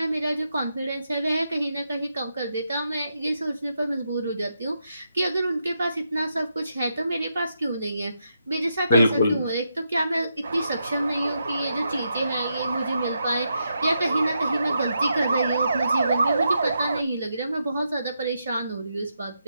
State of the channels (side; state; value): both; inverted; correlation -0.83